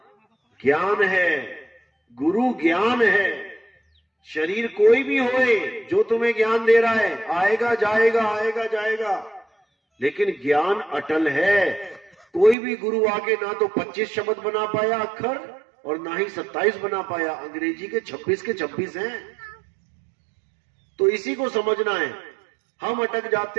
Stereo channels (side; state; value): left; drops out; at 12.6 s